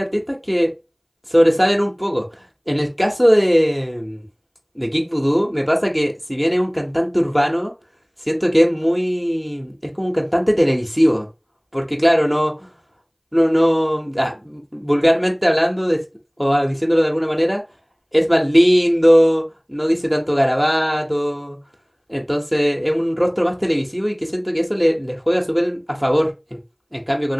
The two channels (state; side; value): identical; both; correlation 1.00